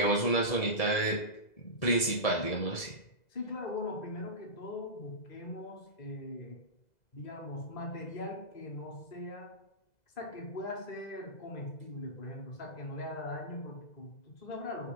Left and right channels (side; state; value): right; late; 2.0 ms